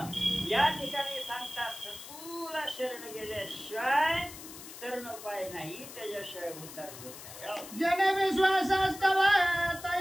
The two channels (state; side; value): noise; left; hiss, 14 dB below the sound